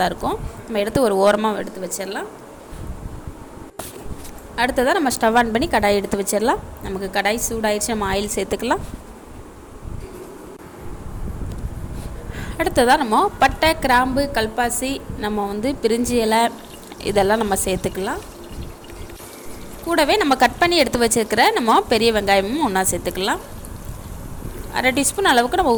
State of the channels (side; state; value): both; identical; correlation 1.00